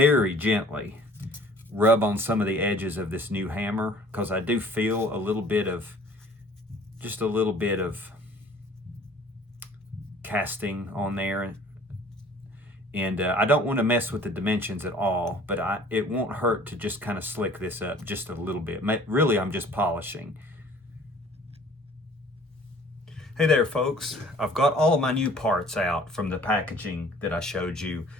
gently rub on some of the edges of this new hammer because I do feel a little bit of, just a little bit of casting on there, and I don't want to mess with the dimensions at all, but it won't hurt to just kind of slick this up just a little bit. Really, I'm just polishing. Hey there, folks. I've got all of my new parts out from the packaging that I showed you,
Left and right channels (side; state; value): both; normal; correlation 0.52